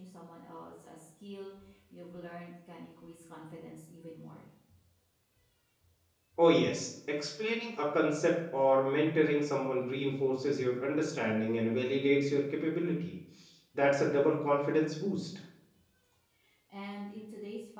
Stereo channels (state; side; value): identical; both; correlation 1.00